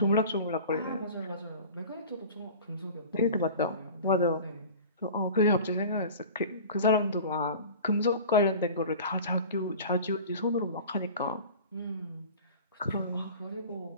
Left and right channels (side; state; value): both; inverted; correlation -0.39